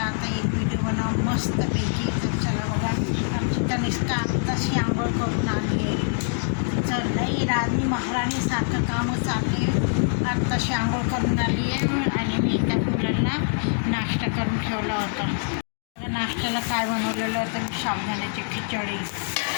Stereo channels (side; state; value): right; silent; digital silence